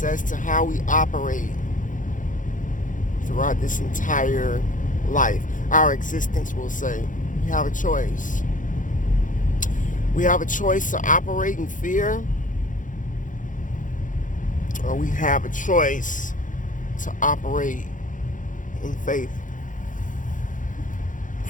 as to how we operate throughout this entire life. Our existence, we'll say. We have a choice. We have a choice to operate in fear, or we have a choice to operate in faith.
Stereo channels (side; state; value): right; late; 0.38 ms